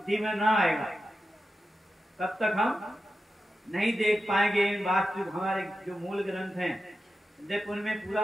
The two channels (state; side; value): normal; both; correlation 0.91